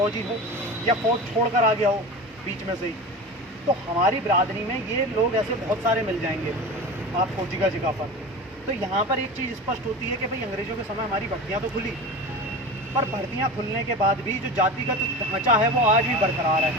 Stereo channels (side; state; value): both; normal; correlation 0.31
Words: हो, या फौज छोड़कर आ गया हो बीच में से ही। तो हमारी बिरादरी में ये लोग ऐसे बहुत सारे मिल जाएंगे आपको जगह जगह पर। तो यहाँ पर एक चीज़ स्पष्ट होती है कि भाई अंग्रेज़ों के समय हमारी भर्तियाँ तो खुली, पर भर्तियाँ खुलने के बाद भी जो जातिगत ढांचा है वो आज भी बरकरार